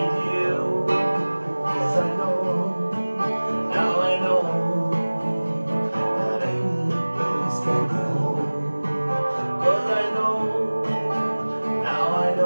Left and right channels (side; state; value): both; inverted; correlation -1.00